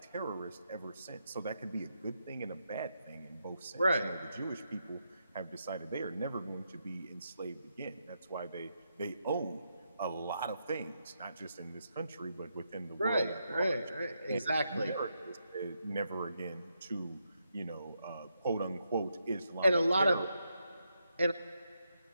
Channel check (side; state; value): both; inverted; correlation -0.82